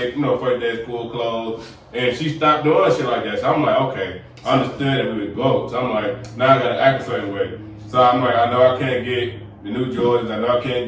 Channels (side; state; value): both; identical; correlation 1.00